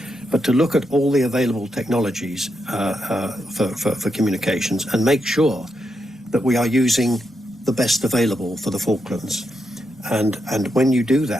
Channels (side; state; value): both; normal; correlation 0.83